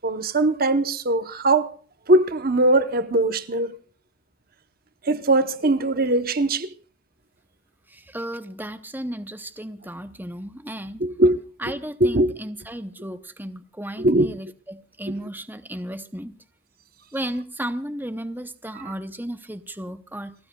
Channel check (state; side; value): normal; both; correlation 0.20